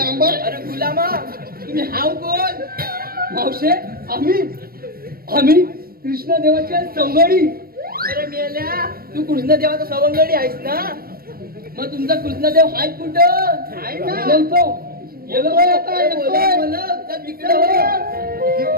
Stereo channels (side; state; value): left; late; 0.44 ms